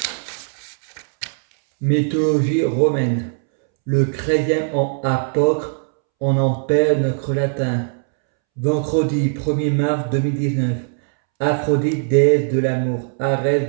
Mythologie romaine. Le chrétien en apôtre, on en perd notre latin. Vendredi 1er mars 2019. Aphrodite, déesse de l'amour.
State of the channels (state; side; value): silent; left; 66 dB below the other